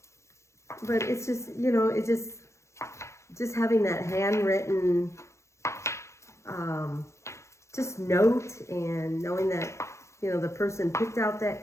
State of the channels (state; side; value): late; right; 0.14 ms